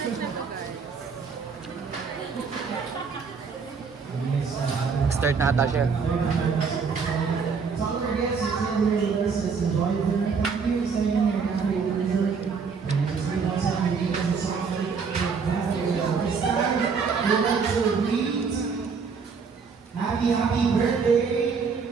Start na ata siya. Happy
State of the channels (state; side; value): quieter; left; 5.5 dB